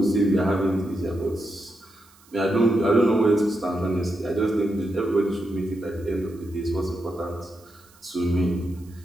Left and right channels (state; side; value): noise; right; hiss, 28 dB below the sound